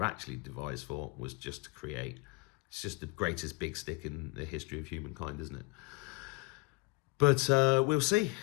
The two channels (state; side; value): quieter; right; 26.4 dB